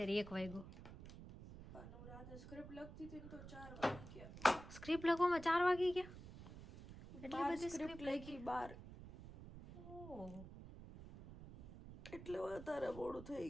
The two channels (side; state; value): right; noise; rumble, 13 dB below the sound